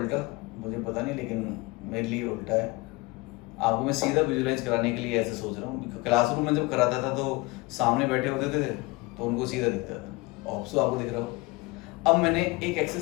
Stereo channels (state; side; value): quieter; right; 23.0 dB